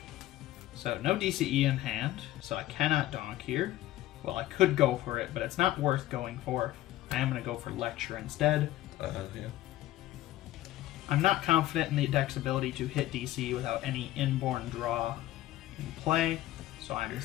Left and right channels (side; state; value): right; quieter; 15.2 dB